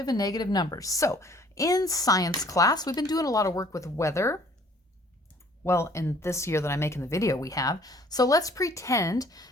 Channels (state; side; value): normal; both; correlation 0.57